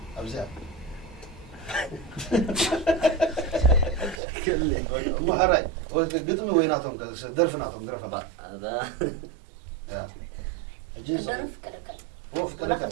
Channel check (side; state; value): left; drops out; at 4.2 s